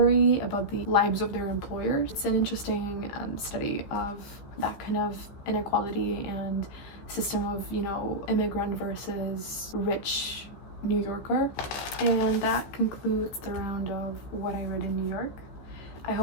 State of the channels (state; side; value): late; right; 15 ms